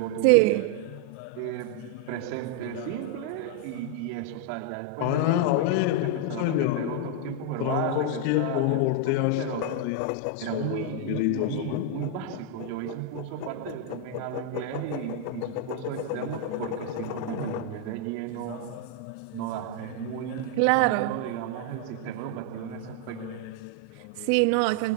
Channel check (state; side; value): different; both; correlation 0.00